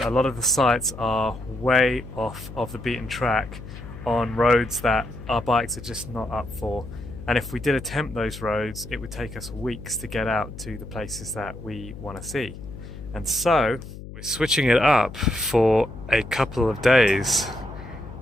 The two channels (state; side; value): noise; left; hum, 13 dB below the sound